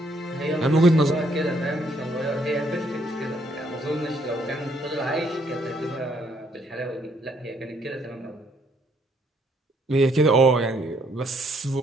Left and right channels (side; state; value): both; normal; correlation 0.69